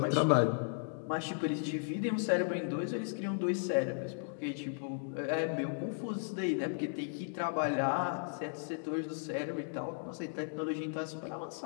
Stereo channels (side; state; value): right; silent; digital silence